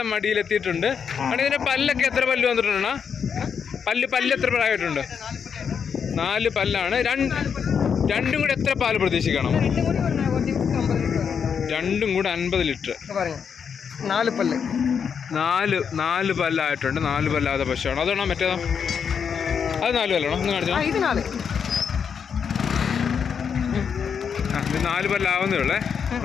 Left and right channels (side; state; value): right; quieter; 6.9 dB